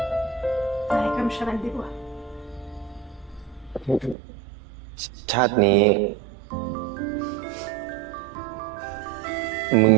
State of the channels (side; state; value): left; drops out; at 4.2 s